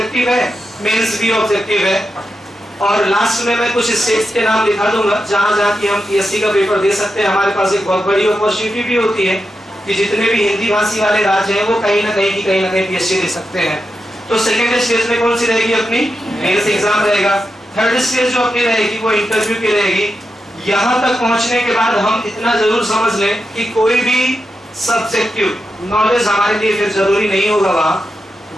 है, मेंस भी ऑब्जेक्टिव है। और लास्ट में मैं कुछ स्टेट्स के नाम लिखा दूंगा जहां जहां की हम पीएससी का पेपर दे सकते हैं। हमारे पास एक बहुत बड़ी अपॉर्चुनिटी भी होती है कि जितने भी हिंदी भाषी वाले राज्य हैं वो कहीं ना कहीं पीएससी दे सकते हैं। तो सेकेंड स्टेज में कौन सी रहेगी, अपनी मेंस एग्जाम रहेगा। थर्ड स्टेज जो अपनी रहेगी वो इंटरव्यू की रहेगी। यहाँ तक पहुंचने के बाद हम इतना जरूर समझ लें कि कोई भी सब्जेक्टिव नॉलेज हमारे लिए फिर जरूरी नहीं होगा।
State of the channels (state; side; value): normal; both; correlation 0.88